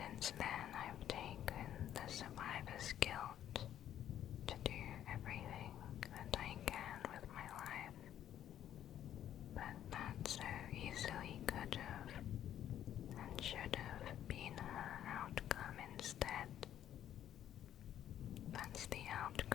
Since then, I've taken the survivor's guilt to do everything that I can with my life. But that so easily could have and should have been her outcome instead. That's the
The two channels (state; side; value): quieter; right; 11.0 dB